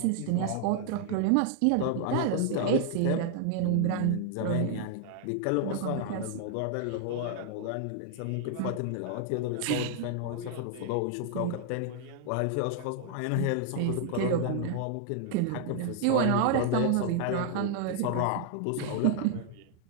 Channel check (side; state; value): both; different; correlation 0.00